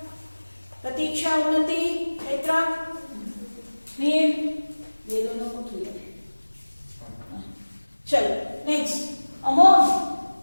Pratiksha, Unnati, Petra? Mir? Ye dono ko clear. Chalo, next. Amon?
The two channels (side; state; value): both; inverted; correlation -1.00